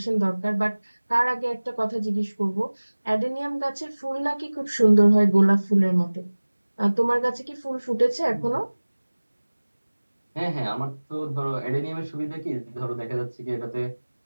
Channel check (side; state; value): both; inverted; correlation -1.00